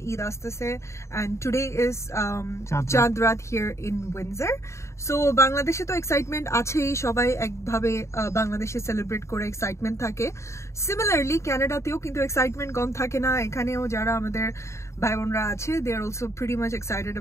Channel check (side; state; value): right; late; 0.14 ms